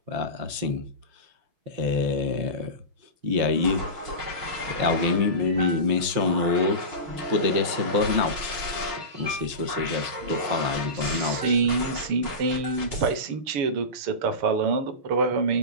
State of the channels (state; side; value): late; left; 5.8 ms